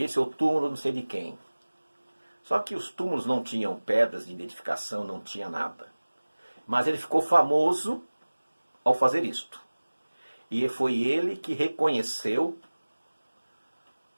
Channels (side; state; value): both; inverted; correlation -1.00